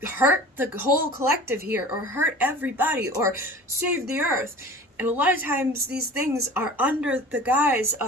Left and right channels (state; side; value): normal; both; correlation 0.40